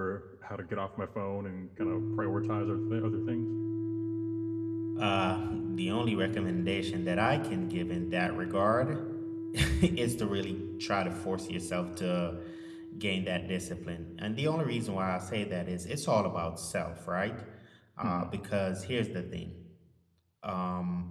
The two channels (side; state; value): both; identical; correlation 1.00